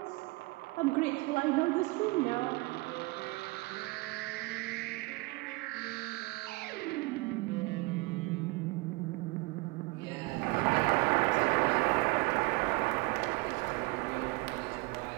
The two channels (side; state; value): left; quieter; 25.2 dB